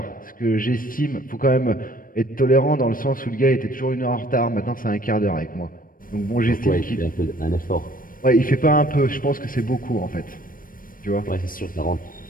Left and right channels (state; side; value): late; right; 0.41 ms